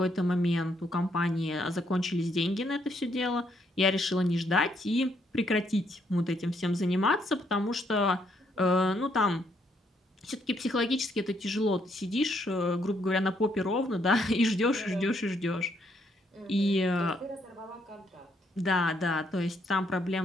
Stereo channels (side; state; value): both; normal; correlation 0.73